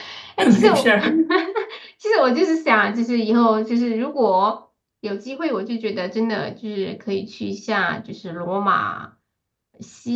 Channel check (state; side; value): identical; both; correlation 1.00